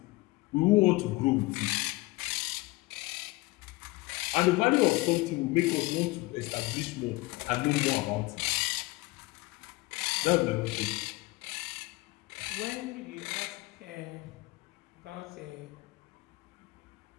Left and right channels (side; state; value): right; quieter; 22.2 dB